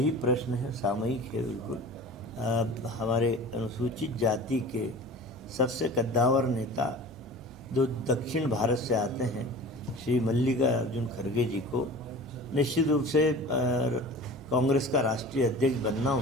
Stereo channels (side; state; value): both; normal; correlation 0.39